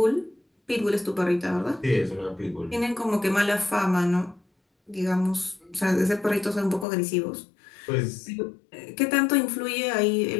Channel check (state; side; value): drops out; right; at 6.9 s